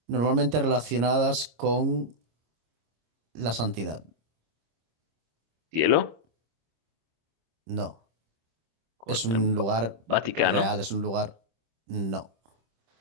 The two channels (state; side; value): late; left; 26 ms